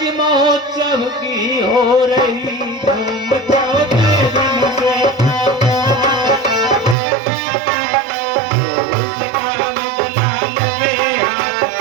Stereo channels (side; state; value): left; drops out; at 7.0 s